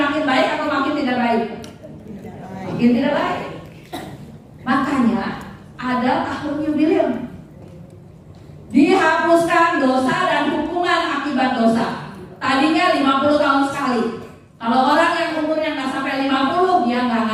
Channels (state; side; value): identical; both; correlation 1.00